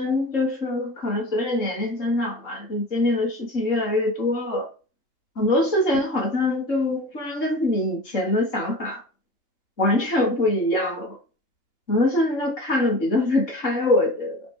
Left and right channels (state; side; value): late; right; 3.7 ms